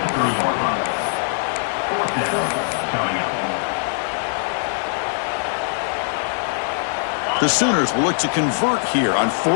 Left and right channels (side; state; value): right; silent; 64 dB below the other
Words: The Sooners will look to convert here on